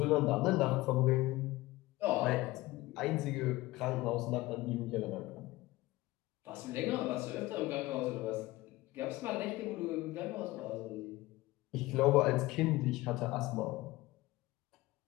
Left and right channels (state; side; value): quieter; right; 19.1 dB